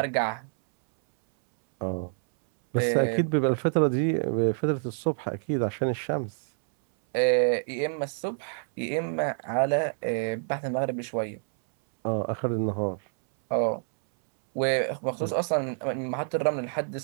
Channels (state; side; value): silent; left; 60 dB below the other